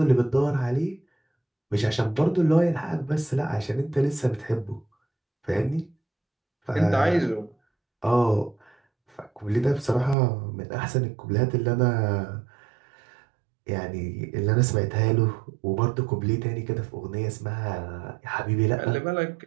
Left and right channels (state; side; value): drops out; left; at 10.2 s